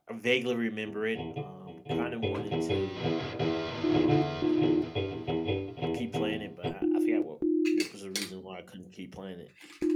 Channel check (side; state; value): both; identical; correlation 1.00